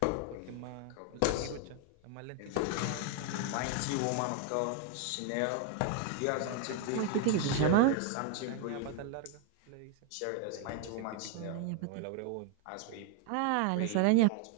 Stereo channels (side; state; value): both; different; correlation 0.01